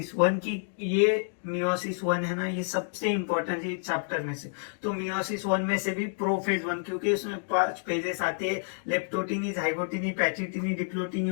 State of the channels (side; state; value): right; silent; digital silence